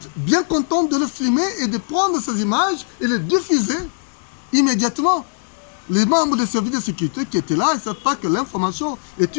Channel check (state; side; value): silent; right; 66 dB below the other